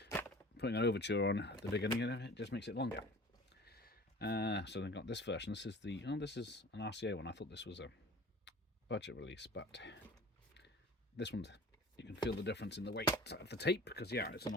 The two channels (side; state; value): both; normal; correlation 0.43